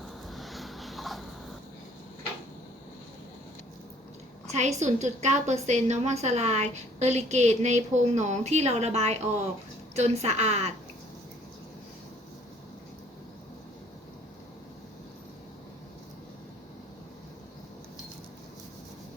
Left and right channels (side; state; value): both; normal; correlation 0.58